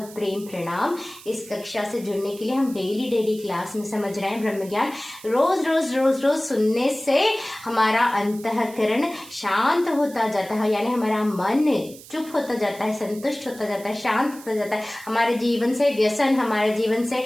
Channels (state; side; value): noise; right; hiss, 19 dB below the sound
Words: प्रेम प्रणाम। इस कक्षा से जुड़ने के लिए हम डेली क्लास में समझ रहे हैं ब्रह्म ज्ञान। रोज रोज रोज रोज सुनने से हमारा अंतःकरण शांत होता जाता है, यानी हमारा मन चुप होता जाता है, संतुष्ट होता जाता है, शांत होता जाता है। हमारे जीवन से व्यसन, हमारे जीवन से